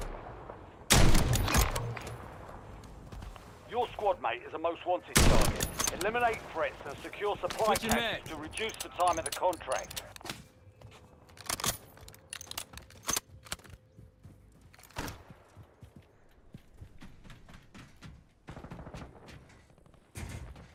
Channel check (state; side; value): identical; both; correlation 1.00